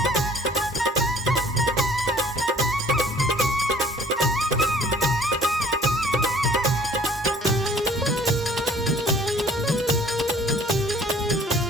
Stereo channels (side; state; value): both; normal; correlation 0.54